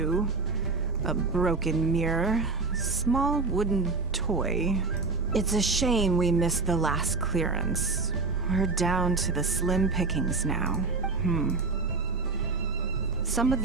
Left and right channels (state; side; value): quieter; left; 4.0 dB